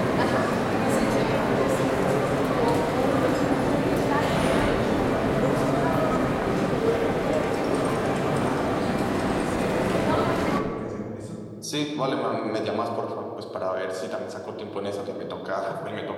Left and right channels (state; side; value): identical; both; correlation 1.00